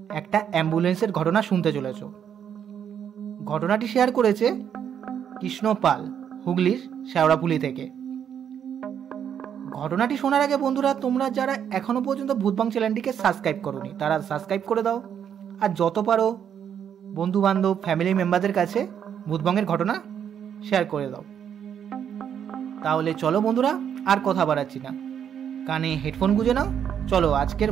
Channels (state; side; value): quieter; left; 8.6 dB